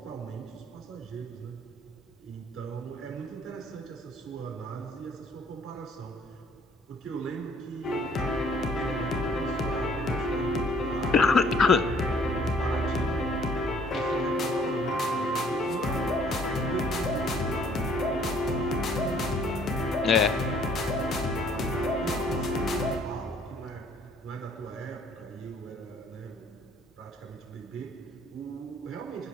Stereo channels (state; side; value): normal; both; correlation 0.60